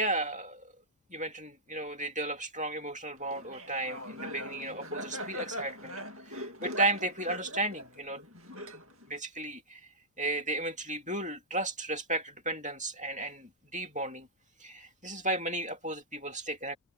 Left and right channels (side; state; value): both; normal; correlation -0.14